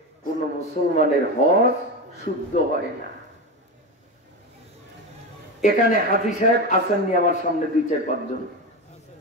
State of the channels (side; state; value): both; normal; correlation 0.19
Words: কোন মুসলমানের হজ শুদ্ধ হয় না। এখানে হাফিজ সাহেব আসেননি আমার সামনে 2-4-5 জন,